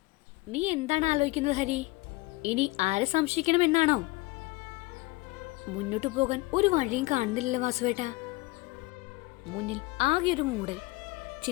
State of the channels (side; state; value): right; quieter; 21.8 dB